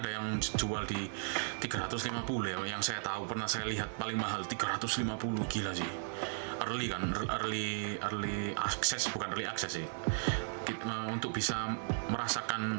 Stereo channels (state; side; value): silent; left; digital silence